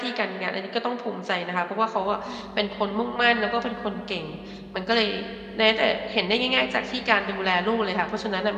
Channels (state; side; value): identical; both; correlation 1.00